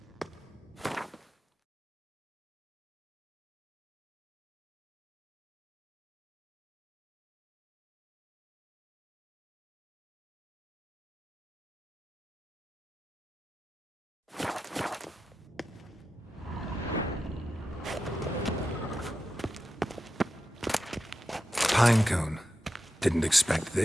Pinecone. Didn't expect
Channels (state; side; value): normal; both; correlation 0.90